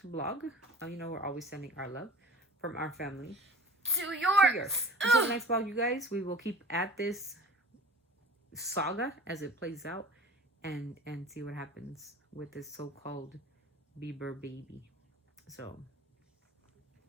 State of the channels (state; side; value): normal; both; correlation 0.41